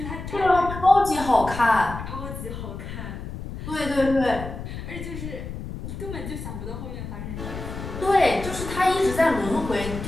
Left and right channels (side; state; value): left; noise; rumble, 8 dB below the sound